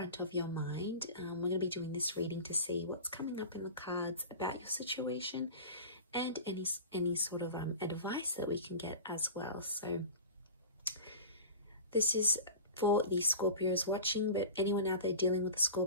of your mind. We're going to be doing this reading to see what's coming up in the cards about your situation and any sort of advice that we can get as well. So this is for the Scorpios watching, but anyone out there dealing with a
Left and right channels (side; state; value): both; inverted; correlation -0.33